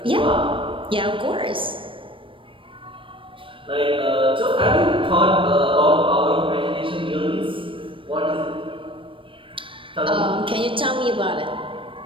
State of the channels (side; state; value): left; late; 0.25 ms